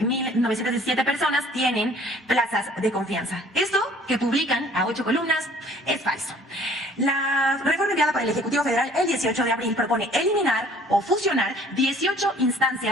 personas tienen plazas de confianza. Esto que publican a 8 columnas es falso. La reforma enviada por el Ejecutivo Federal el 18 de abril propone eliminar o fusionar 18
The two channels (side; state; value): both; normal; correlation 0.54